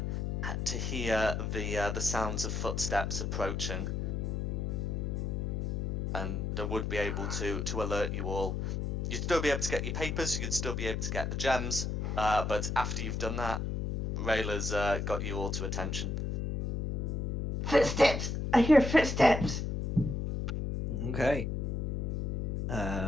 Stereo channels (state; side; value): noise; left; hum, 1 dB below the sound